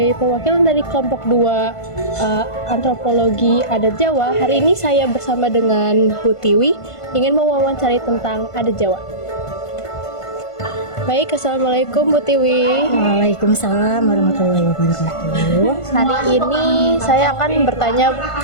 perwakilan dari kelompok 2 Antropologi Adat Jawa. Hari ini saya bersama dengan Bu Tiwi ingin mewawancarai tentang adat Jawa. Baik, Assalamualaikum Bu Tiwi. Waalaikumsalam warahmatullahi wabarakatuh. Hari ini saya akan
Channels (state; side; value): late; right; 1.5 ms